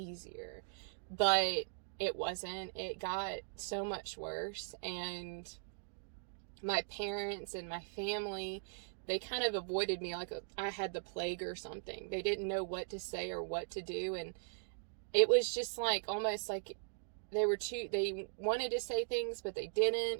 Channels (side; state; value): left; silent; digital silence